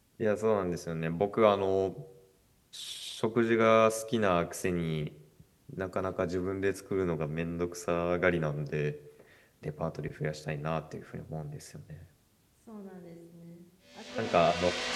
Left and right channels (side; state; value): both; identical; correlation 1.00